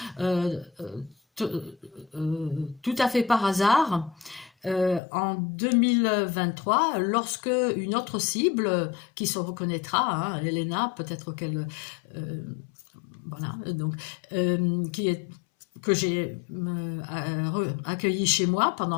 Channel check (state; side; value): drops out; right; at 5.0 s